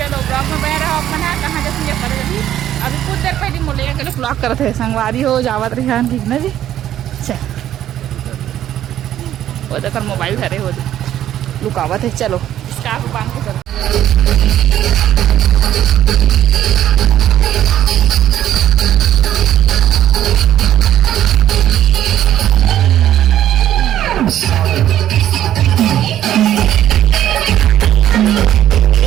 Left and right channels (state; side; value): quieter; left; 11.7 dB